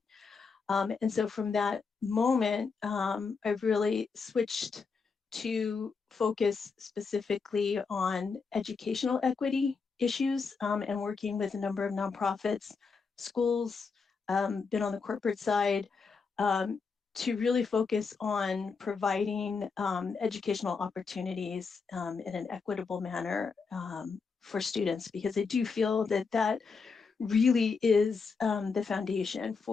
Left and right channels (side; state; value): right; quieter; 5.0 dB